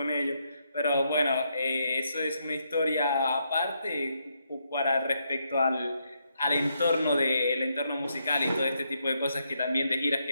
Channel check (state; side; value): inverted; both; correlation -0.78